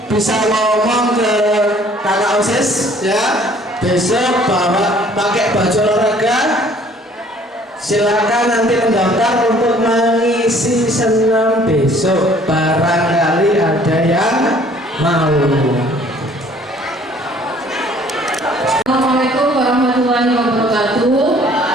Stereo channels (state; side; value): normal; both; correlation 0.56